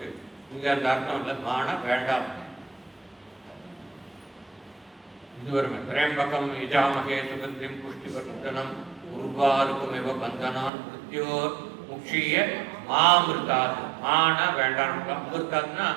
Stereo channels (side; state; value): left; drops out; at 10.7 s